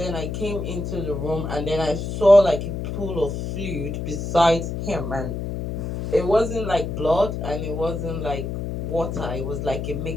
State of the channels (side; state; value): left; noise; hum, 4 dB below the sound